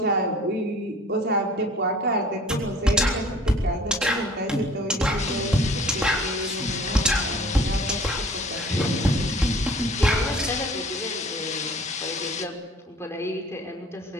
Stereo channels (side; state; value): both; normal; correlation 0.49